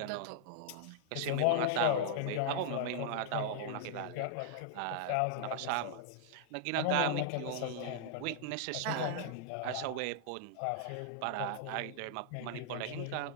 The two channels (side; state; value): both; different; correlation -0.01